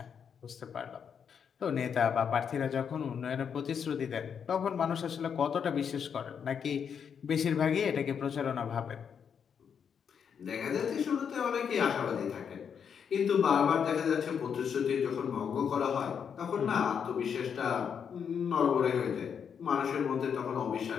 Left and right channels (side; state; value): right; quieter; 7.3 dB